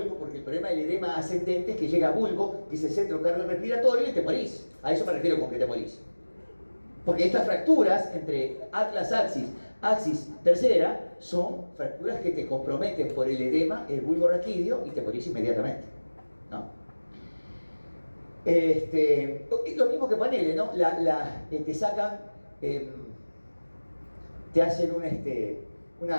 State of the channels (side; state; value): both; inverted; correlation -1.00